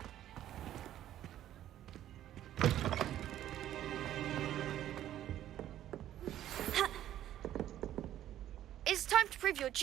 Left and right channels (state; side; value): quieter; left; 12.2 dB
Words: It's time to prove your